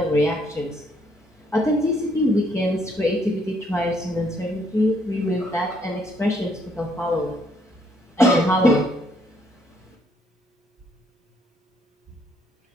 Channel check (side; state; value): both; normal; correlation 0.69